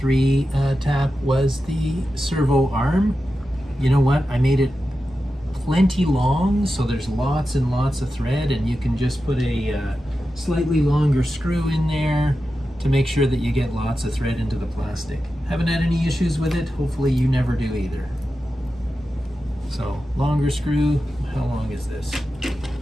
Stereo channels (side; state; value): both; normal; correlation 0.91